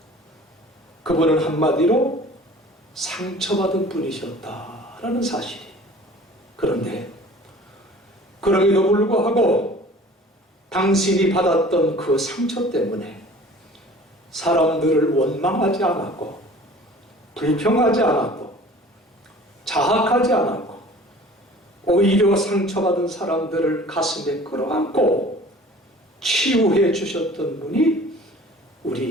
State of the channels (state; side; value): normal; both; correlation 0.46